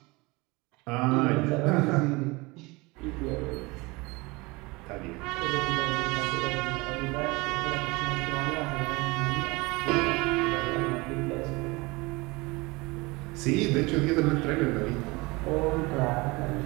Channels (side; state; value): left; quieter; 24.2 dB